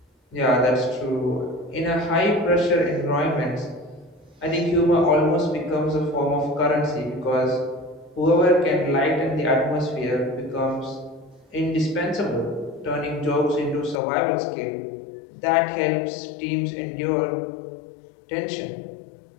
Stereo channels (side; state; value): right; drops out; at 14.0 s